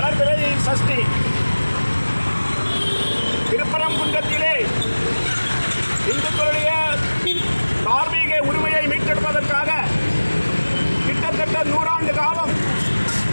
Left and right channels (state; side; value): inverted; both; correlation -1.00